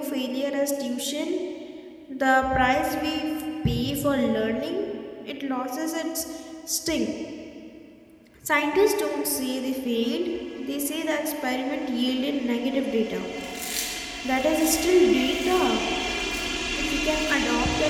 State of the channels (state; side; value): identical; both; correlation 1.00